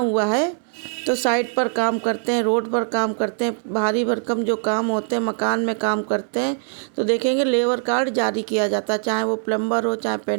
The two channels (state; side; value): silent; left; digital silence